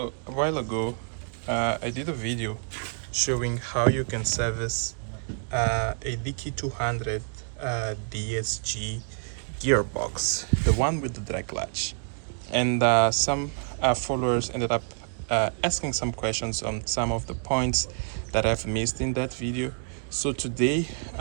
a while ago, I did a video showing how you can service a DQ200 DSG Gearbox, the one with the drag clutch. And some followers ended up asking some questions on some of the points that I've missed in that video. So today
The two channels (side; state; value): left; silent; 55 dB below the other